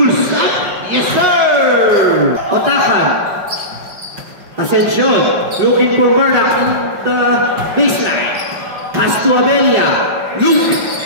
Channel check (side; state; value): left; late; 5.2 ms